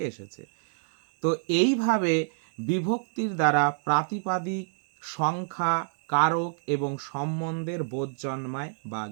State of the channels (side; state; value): left; silent; digital silence